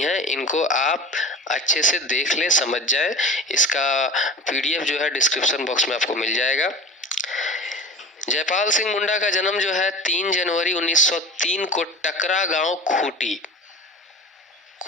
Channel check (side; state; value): both; normal; correlation 0.34